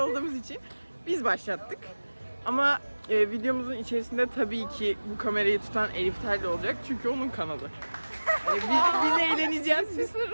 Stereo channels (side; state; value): both; inverted; correlation -1.00